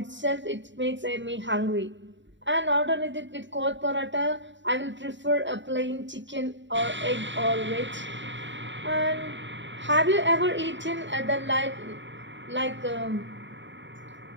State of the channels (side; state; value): left; late; 0.54 ms